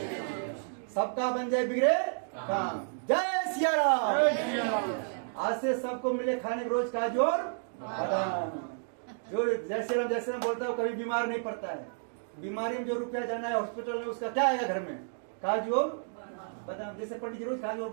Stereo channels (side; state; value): left; silent; digital silence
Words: सबका बन जाए बिगड़े काम। जय सिया राम। आज से सबको मिले खाने के रोज काजू और बादाम। जो जय श्री राम बोलता है वो कभी बीमार नहीं पड़ता है। बीमारी में जो रुपया जाना है हॉस्पिटल में उसका क्या आएगा घर में? काजू और बादाम। जैसे पंडित जी रोज काजू और